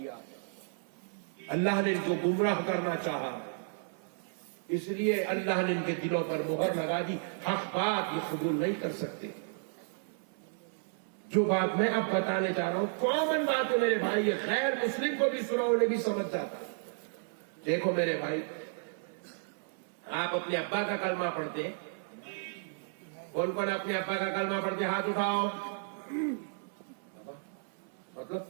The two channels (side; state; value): left; silent; 56 dB below the other